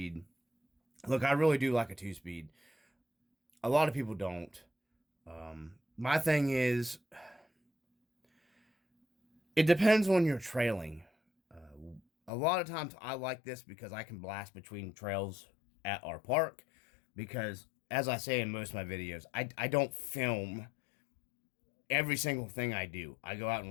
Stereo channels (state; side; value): drops out; right; at 12.3 s